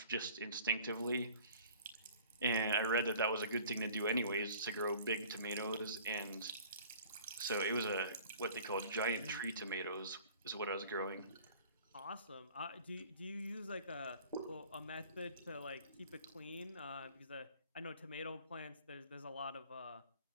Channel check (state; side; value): inverted; both; correlation -0.49